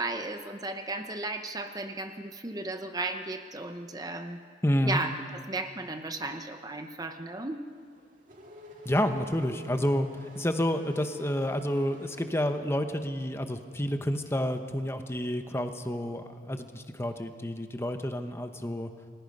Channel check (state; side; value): normal; both; correlation 0.74